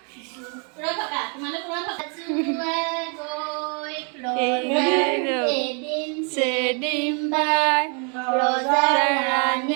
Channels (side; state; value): left; quieter; 37.8 dB